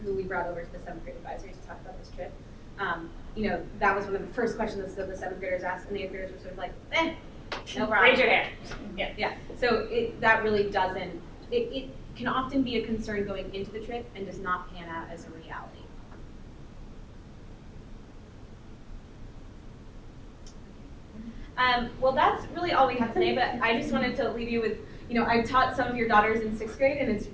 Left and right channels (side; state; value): both; identical; correlation 1.00